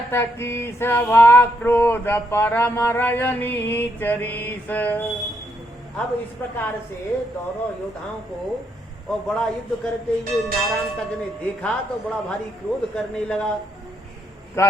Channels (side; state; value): both; normal; correlation 0.76